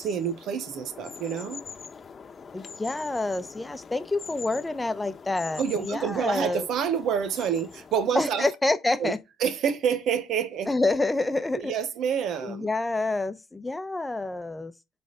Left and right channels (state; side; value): normal; both; correlation 0.71